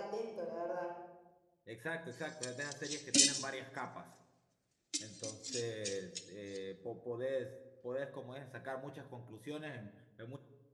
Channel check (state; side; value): identical; both; correlation 1.00